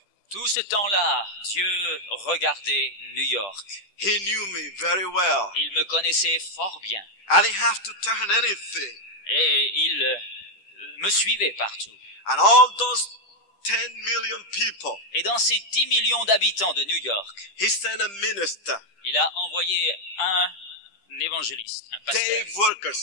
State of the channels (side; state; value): right; late; 10 ms